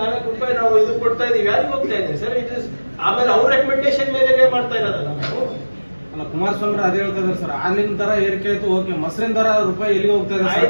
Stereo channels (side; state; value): both; inverted; correlation -1.00